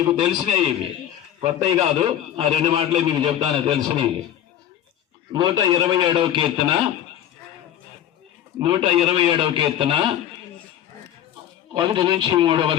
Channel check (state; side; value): quieter; right; 11.0 dB